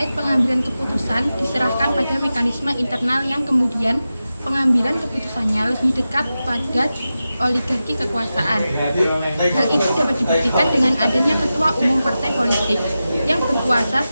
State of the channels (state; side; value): inverted; both; correlation -0.93